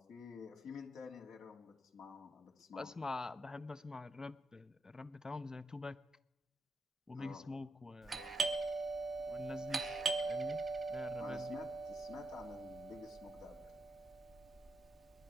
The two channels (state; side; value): normal; both; correlation 0.79